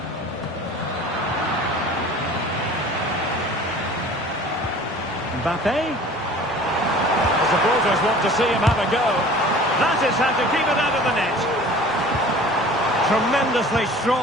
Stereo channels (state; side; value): normal; both; correlation 0.45